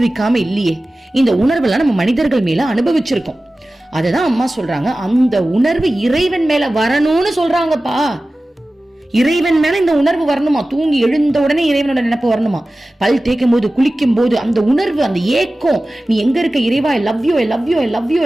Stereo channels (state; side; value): normal; both; correlation 0.96